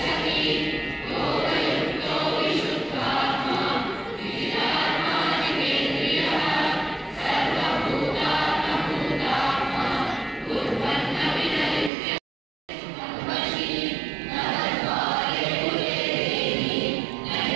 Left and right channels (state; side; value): drops out; left; at 11.9 s